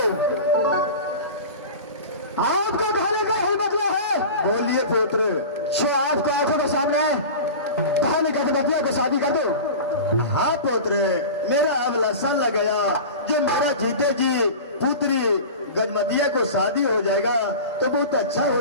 आपको कहने का ही मतलब है। बोलिए पुत्र। जो आपको आंखों के सामने बहन गजबतिया को शादी कर दो। हाँ पुत्र, मेरा अब लसन लग गया, जो मेरा जीते जी पुत्री गजमतिया को शादी हो जाएगा तो बहुत अच्छा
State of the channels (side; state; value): both; inverted; correlation -0.32